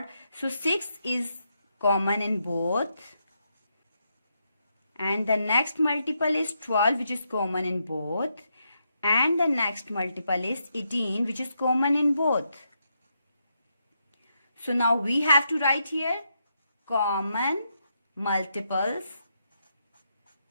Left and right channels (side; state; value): both; inverted; correlation -0.81